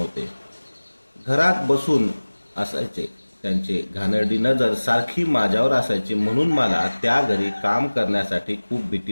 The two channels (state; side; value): inverted; both; correlation -1.00